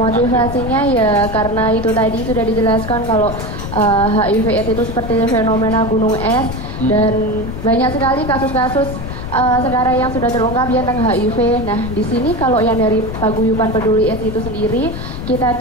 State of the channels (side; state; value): left; noise; rumble, 7 dB below the sound